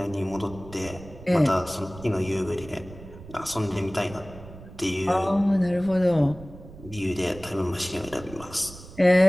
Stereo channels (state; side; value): noise; right; rumble, 16 dB below the sound